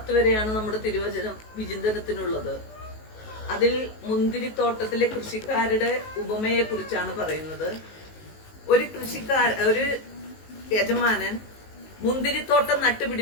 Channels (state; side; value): late; right; 19 ms